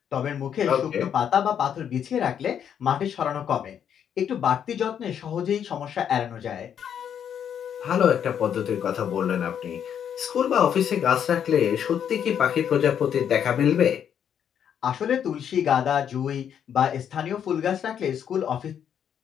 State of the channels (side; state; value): right; quieter; 8.7 dB